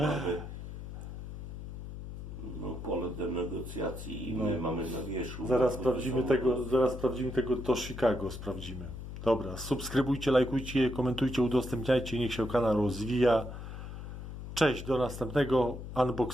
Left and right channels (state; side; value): noise; left; hum, 9 dB below the sound